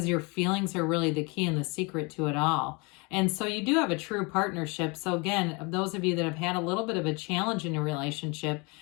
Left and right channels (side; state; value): right; quieter; 28.9 dB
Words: your feelings are really the key and the secret to it all. And so you do have a true partnership. So again, those of you that have had a little bit of a challenge in a relationship,